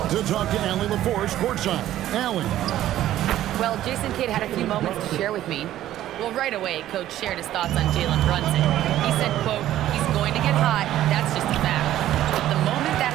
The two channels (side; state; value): left; quieter; 13.1 dB